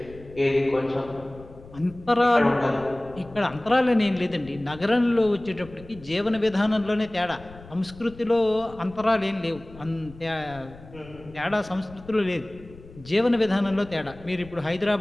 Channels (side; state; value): left; noise; rumble, 19 dB below the sound